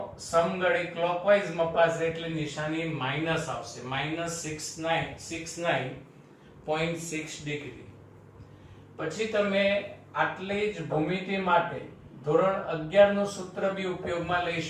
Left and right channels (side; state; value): both; identical; correlation 1.00